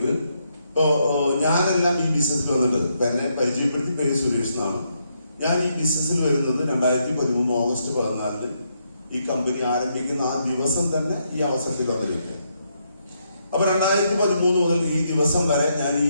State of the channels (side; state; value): both; inverted; correlation -0.78